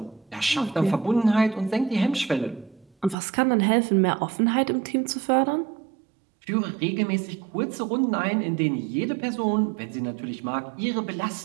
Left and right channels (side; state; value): left; drops out; at 3.2 s